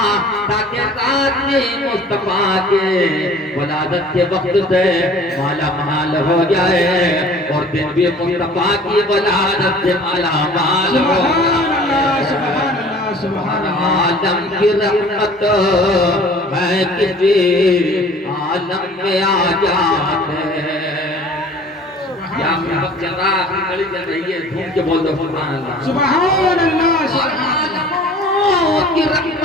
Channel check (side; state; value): both; normal; correlation 0.48